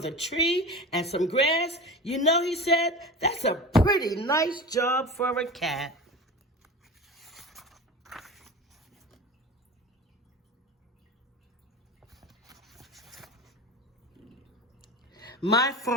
tree and some grass. You know, he said, that's a pretty nice job for a cat. My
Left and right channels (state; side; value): normal; both; correlation 0.31